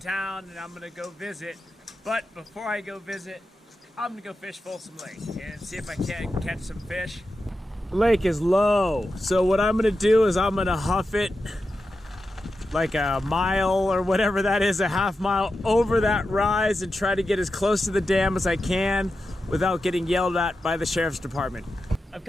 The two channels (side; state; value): both; normal; correlation 0.90